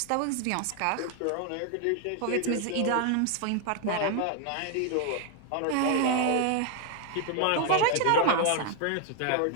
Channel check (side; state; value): both; different; correlation 0.00